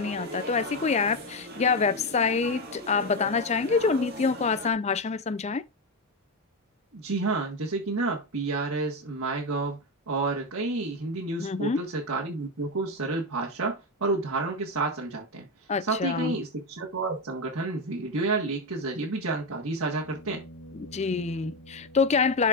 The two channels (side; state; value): both; normal; correlation 0.11